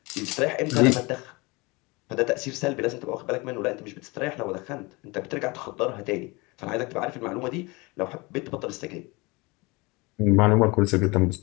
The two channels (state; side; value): quieter; right; 25.2 dB